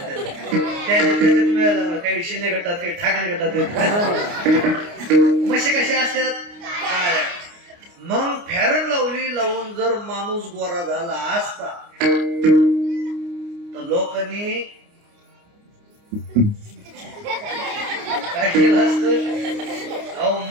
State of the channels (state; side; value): late; left; 29 ms